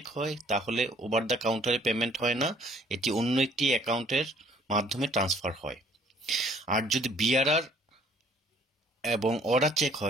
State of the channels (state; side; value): normal; both; correlation 0.59